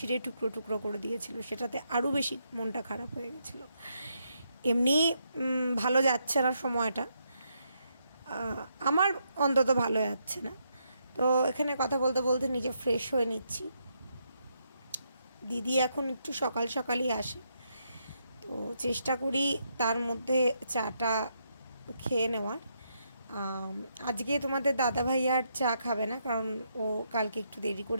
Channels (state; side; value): inverted; both; correlation -0.79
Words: টুকরো টুকরো করে দিয়েছিল, সেটাতে আরও বেশি মনটা খারাপ হয়ে গেছিলো। এমনি ভালো যাচ্ছে না সময়টা, আমার অন্তত ভালো যাচ্ছে না। তো এখানে কথা বলতে বলতে নিজে ফ্রেশ হয়ে নিচ্ছি। দিদি এখন একটু সকাল সকালই আসে, তো চেষ্টা করি তার মধ্যে চাটা খেয়ে নেওয়ার। আজকে তোমাদের দাদাভাই আর চা খাবে না, কারণ ও কালকে একটু দেরি